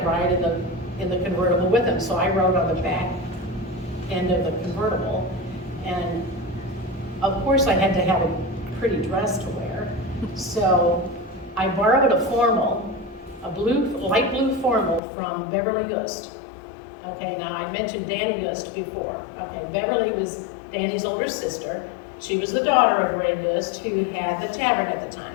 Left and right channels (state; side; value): drops out; right; at 15.0 s